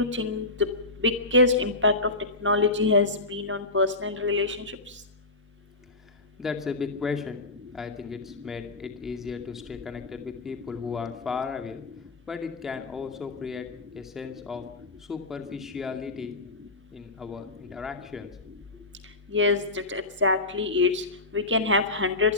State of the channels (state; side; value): quieter; right; 3.0 dB